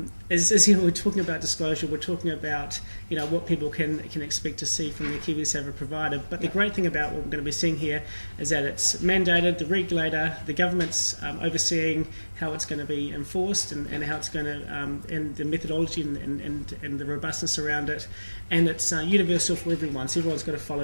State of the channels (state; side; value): inverted; both; correlation -1.00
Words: is we're talking about disclosure. We're talking about what people can expect to see from the KiwiSaver provider. But the great thing about what we're going to be seeing here is that it's mandated, the regulator, the government's overseeing how it's going to be enforced and how it's going to, and the methodology and the robustness around it. And it's universal for everyone, so everyone's got to